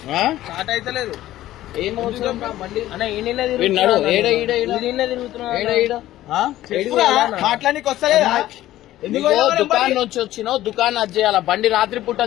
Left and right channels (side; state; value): right; quieter; 14.5 dB